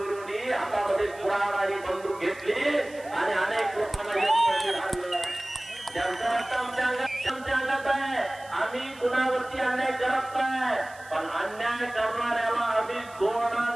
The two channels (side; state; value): right; noise; hiss, 23 dB below the sound